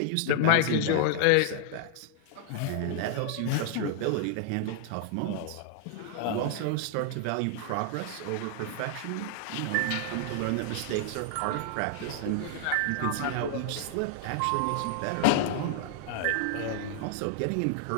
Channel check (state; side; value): different; both; correlation 0.00